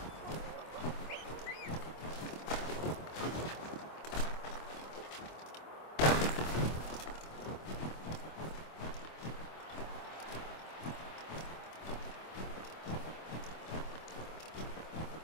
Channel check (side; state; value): right; late; 25 ms